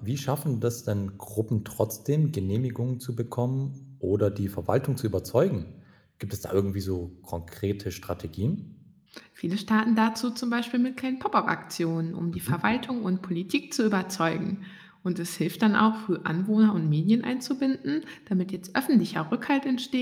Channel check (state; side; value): identical; both; correlation 1.00